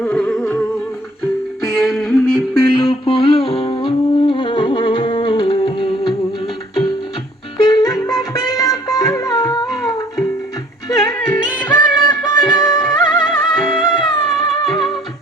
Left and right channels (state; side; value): normal; both; correlation 0.56